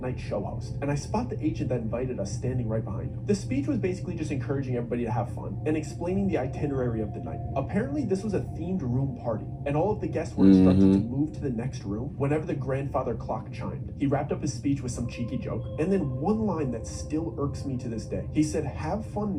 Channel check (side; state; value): both; identical; correlation 1.00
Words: show host, and I spot the agent that invited us standing right behind him. The speech was basically just encouraging everybody to have fun, and explaining the itinerary of the night. Apparently, this was a themed room party, and all of the guests were instructed to move to the next room whenever the grandfather clock chimed. He wrapped up his speech with some cheeky joke, and then one line that still irks me to this day. He said, "Have fun